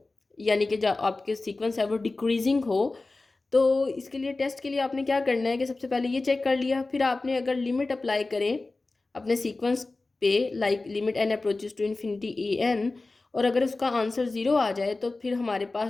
यानी कि जो आपके सीक्वेंस है वो डिक्रीजिंग हो, तो इसके लिए टेस्ट के लिए आपने क्या करना है कि सबसे पहले ये चेक कर लिया, फिर आपने अगर लिमिट अप्लाई करें अपने सीक्वेंस पे, like limit n approaches to infinity a n, और अगर उसका आंसर ज़ीरो आ जाए तो फिर हमारे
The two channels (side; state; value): right; quieter; 3.3 dB